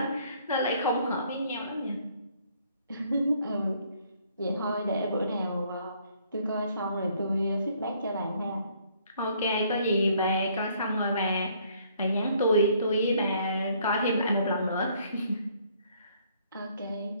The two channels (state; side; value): inverted; both; correlation -0.64